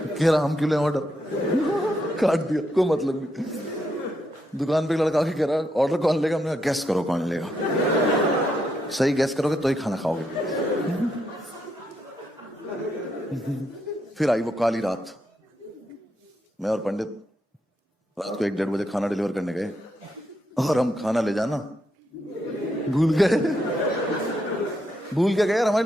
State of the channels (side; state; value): both; normal; correlation 0.80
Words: रहा हम क्यों लें ऑर्डर, काट दिया, कोई मतलब नहीं। दुकान पे एक लड़का के कह रहा ऑर्डर कौन लेगा, हमने कहा गेस करो कौन लेगा, सही गेस करोगे तो ही खाना खाओगे। फिर आई वो काली रात, मैं और पंडित रात को 1-1:30 बजे खाना डिलीवर करने गए और हम खाना ले जाना भूल गए। भूल के गए यार, हमारी